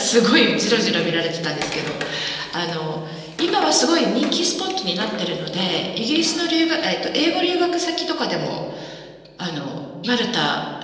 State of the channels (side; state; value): both; identical; correlation 1.00